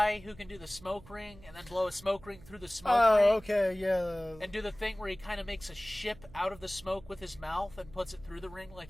who can do the smoke ring and then blow a smoke ring through the smoke ring? Oh, okay, yeah. And do the thing where he kind of makes a ship out of the smoke with his mouth and puts it through the ring,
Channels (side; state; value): right; noise; hum, 21 dB below the sound